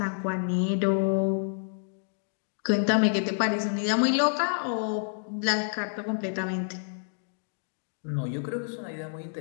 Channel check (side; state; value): right; silent; digital silence